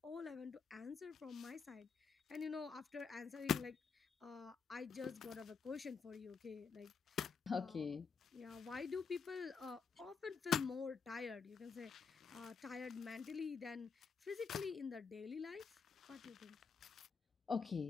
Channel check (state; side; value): quieter; right; 5.6 dB